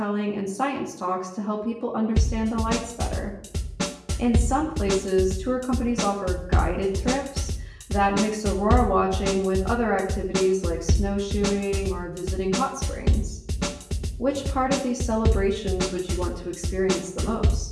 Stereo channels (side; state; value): both; identical; correlation 1.00